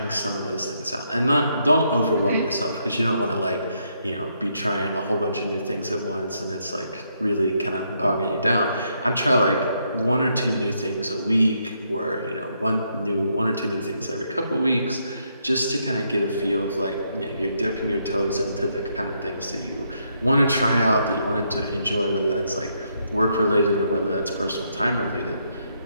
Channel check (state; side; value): inverted; both; correlation -0.76